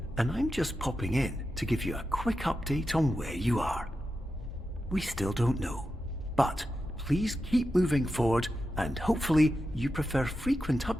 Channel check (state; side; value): normal; both; correlation 0.90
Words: and I'm just popping in to give you a quick update on where you are. We still don't know, but please keep moving forward, and hopefully you prefer frequent